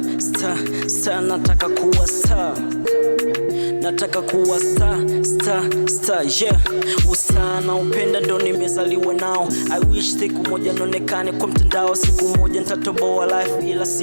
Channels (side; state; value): both; inverted; correlation -1.00